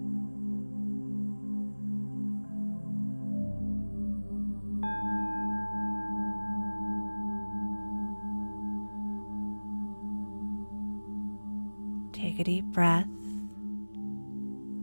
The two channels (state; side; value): inverted; both; correlation -1.00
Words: Take a deep breath